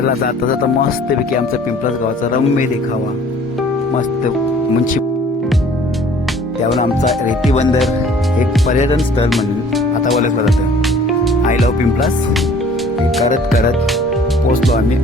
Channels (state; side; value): normal; both; correlation 0.53